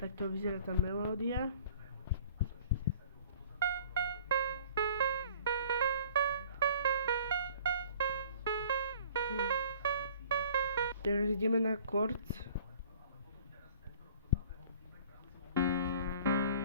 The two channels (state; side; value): inverted; both; correlation -0.52